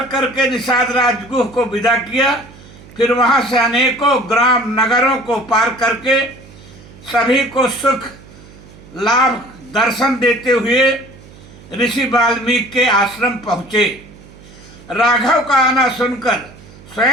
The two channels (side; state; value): right; noise; hum, 21 dB below the sound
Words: करके निषाद राजगुह को विदा किया। फिर वहां से अनेकों ग्राम नगरों को पार करके सभी को सुख लाभ दर्शन देते हुए ऋषि वाल्मीकि के आश्रम पहुंचे। राघव का आना सुनकर